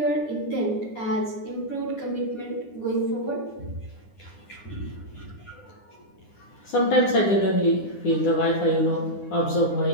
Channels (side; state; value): right; late; 9.8 ms